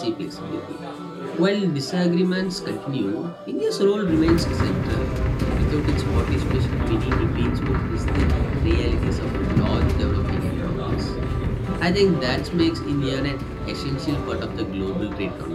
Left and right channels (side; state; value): both; identical; correlation 1.00